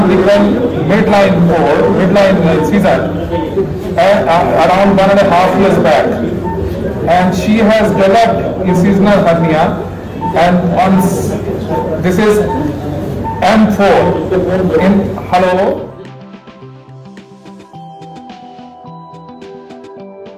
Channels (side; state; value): both; identical; correlation 1.00